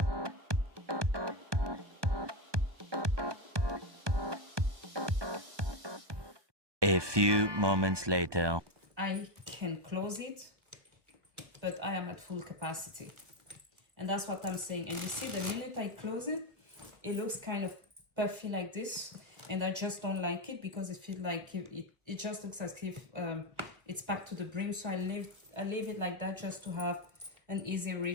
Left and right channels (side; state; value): left; late; 1.1 ms